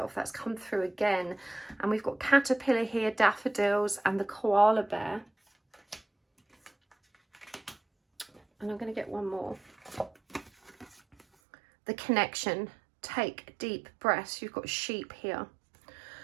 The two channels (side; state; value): left; drops out; at 11.2 s